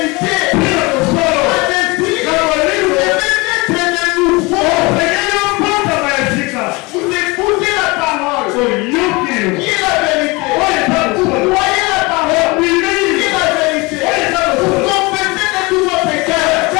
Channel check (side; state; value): right; quieter; 25.0 dB